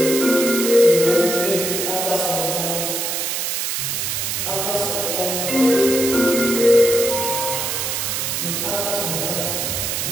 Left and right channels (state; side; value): noise; right; hiss, 1 dB below the sound